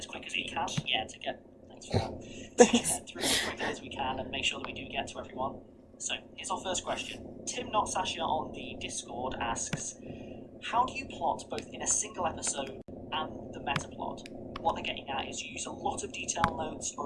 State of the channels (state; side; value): identical; both; correlation 1.00